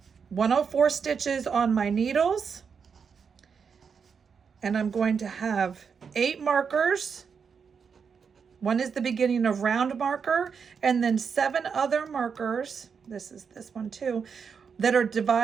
104 stitches on my needles. And I'm going to have 8 markers. One is the beginning of round marker, and then 7 other markers, this is this one too, that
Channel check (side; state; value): left; quieter; 6.2 dB